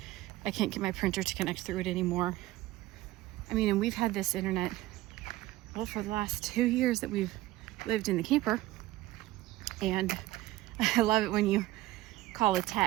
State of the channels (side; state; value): left; quieter; 16.8 dB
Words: I can't get my printer to connect through it anymore. I mean, and we've had this internet, well, for the last 2 years that we've lived in the camper. And I love it when you call a